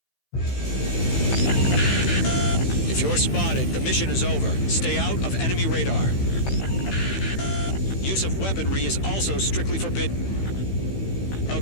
If you're spotted, the mission is over. Stay out of enemy radar. Use of weaponry is also strictly forbidden.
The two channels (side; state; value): right; late; 15 ms